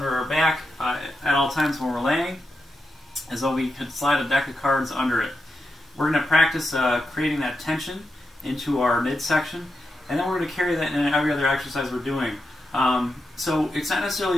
our back at all times when we're laying, as though we could slide a deck of cards under it. We're going to practice creating that tension into our midsection, and then we're going to carry that in every other exercise we're doing. So it's not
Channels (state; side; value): normal; both; correlation 0.87